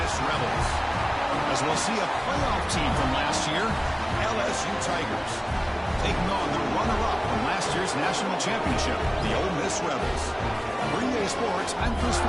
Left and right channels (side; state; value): both; identical; correlation 1.00